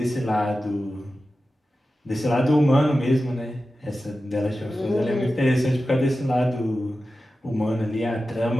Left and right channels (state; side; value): normal; both; correlation 0.93